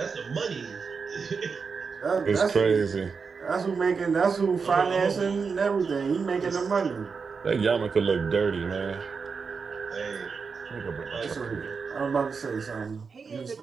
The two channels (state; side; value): quieter; left; 5.3 dB